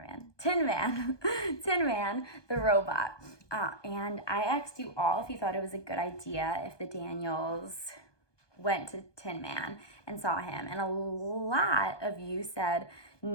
Man, Tin Man, Tin Man, the robot. And I asked you all if you thought it was a good idea if the Daniels went to Tin Man and saw him. And a lot of you said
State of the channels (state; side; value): late; right; 1.2 ms